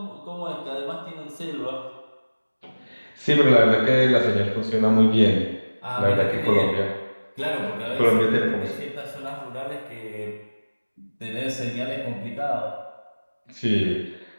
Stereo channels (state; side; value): inverted; both; correlation -1.00